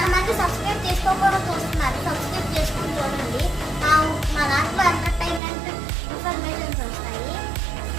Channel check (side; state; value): left; drops out; at 5.4 s